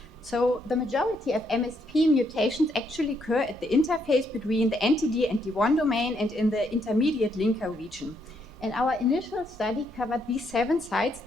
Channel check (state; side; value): normal; both; correlation 0.74